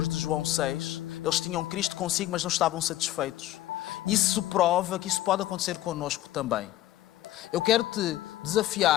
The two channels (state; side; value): quieter; right; 14.5 dB